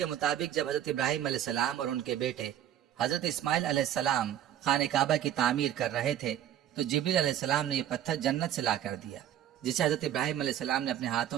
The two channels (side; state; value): left; quieter; 11.0 dB